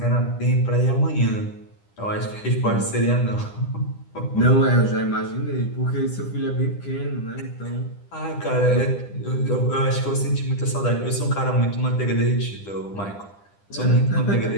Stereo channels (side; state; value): right; late; 10 ms